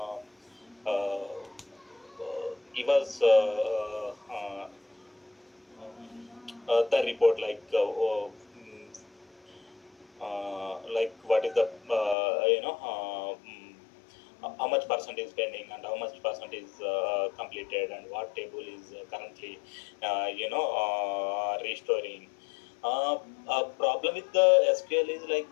give us the report, like what is the how much percent is pending and how much percent is completed, and what table is currently restoring. uh, a problem with the SQL is like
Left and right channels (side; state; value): right; drops out; at 12.2 s